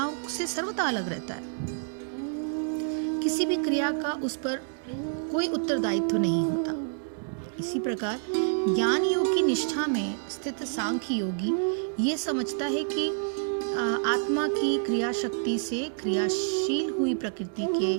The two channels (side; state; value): left; silent; digital silence